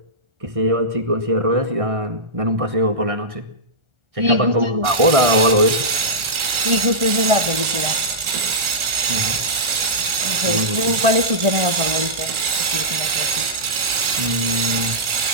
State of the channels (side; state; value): left; late; 1.4 ms